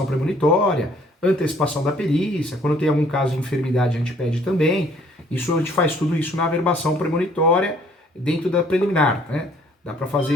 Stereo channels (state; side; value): normal; both; correlation 0.60